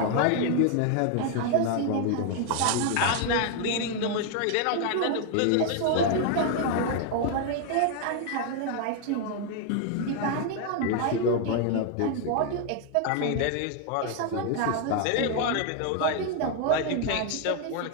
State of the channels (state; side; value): different; both; correlation 0.00